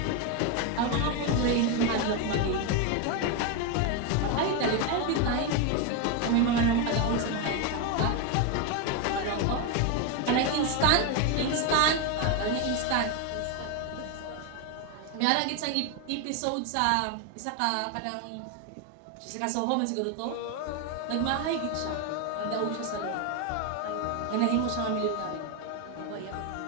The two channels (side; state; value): both; different; correlation 0.02